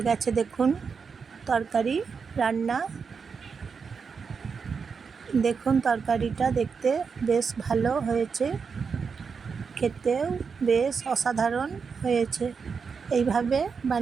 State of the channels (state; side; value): quieter; left; 5.6 dB